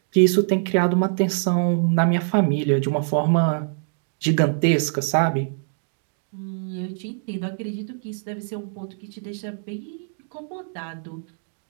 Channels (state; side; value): silent; left; digital silence